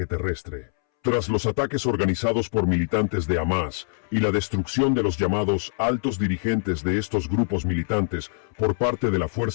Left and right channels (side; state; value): right; silent; 62 dB below the other